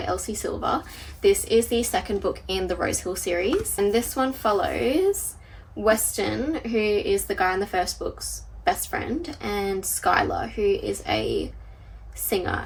Elsie Silver. This is the second book in the Rosehill series, and this one follows Weston, who is the guy in the first book's best friend, and Skylar, who is a singer.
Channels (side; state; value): both; identical; correlation 1.00